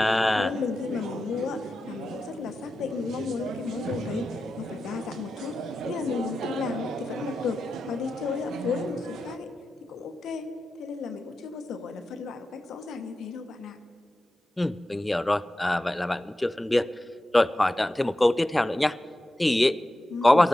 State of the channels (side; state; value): both; normal; correlation 0.91